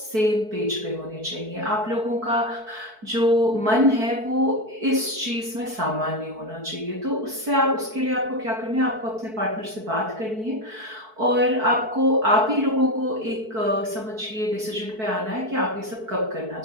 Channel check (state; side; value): late; left; 4.6 ms